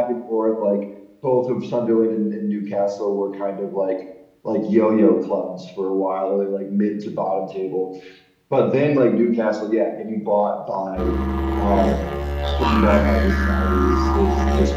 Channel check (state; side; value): identical; both; correlation 1.00